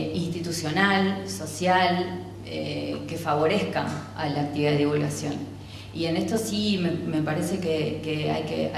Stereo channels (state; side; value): identical; both; correlation 1.00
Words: social, que favorezca a la actividad de divulgación. Y en esto sí me parece que